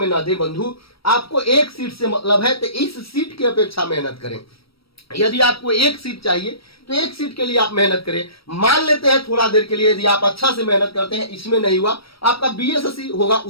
ना दे बंधु। आपको 1 सीट से मतलब है तो इस सीट की अपेक्षा मेहनत करें। यदि आपको 1 सीट चाहिए तो 1 सीट के लिए आप मेहनत करें। मान लेते हैं थोड़ा देर के लिए यदि आप अच्छा से मेहनत करते हैं, इसमें नहीं हुआ, आपका बीएसएससी होगा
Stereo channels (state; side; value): late; right; 0.75 ms